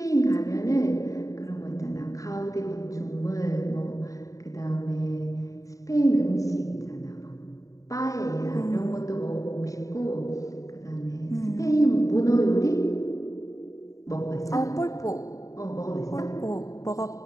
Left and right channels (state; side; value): late; right; 0.16 ms